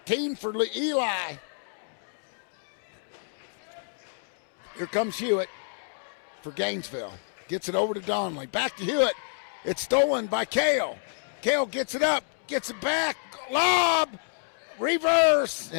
for Eli. Here comes Hewitt for Gainesville. Gets it over to Donley. Back to Hewitt. It's stolen by Kale. Kale gets it up, gets it back. Lob! Reverse!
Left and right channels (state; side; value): silent; right; digital silence